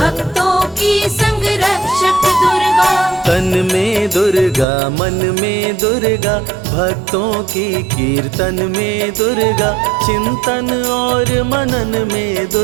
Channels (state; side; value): drops out; left; at 4.7 s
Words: की संग रक्षक दुर्गा। तन में दुर्गा मन में दुर्गा, भक्तों की कीर्तन में दुर्गा, चिंतन और मनन में